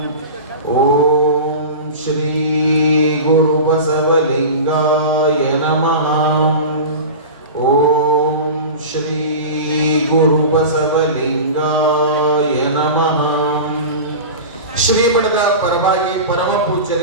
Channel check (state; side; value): inverted; both; correlation -0.30